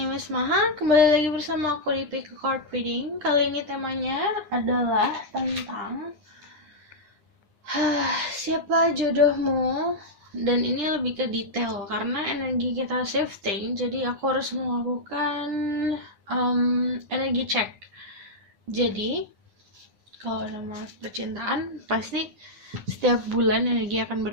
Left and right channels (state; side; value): late; left; 9.7 ms